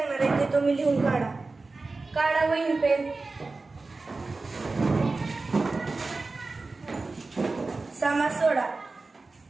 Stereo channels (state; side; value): quieter; left; 3.6 dB